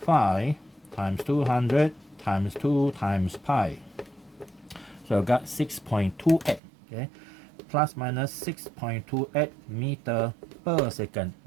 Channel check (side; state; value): left; drops out; at 6.6 s